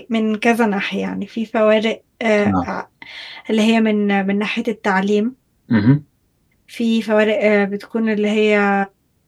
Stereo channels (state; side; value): identical; both; correlation 1.00